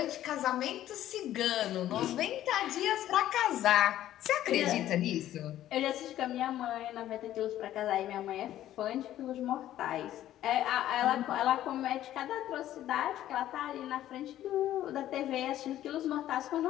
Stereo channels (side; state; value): right; quieter; 12.8 dB